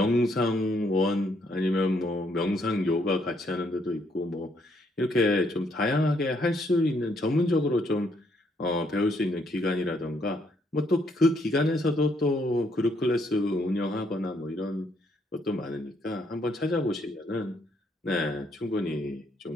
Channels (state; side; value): normal; both; correlation 0.71